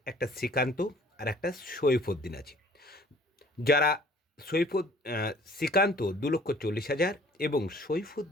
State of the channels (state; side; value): normal; both; correlation 0.54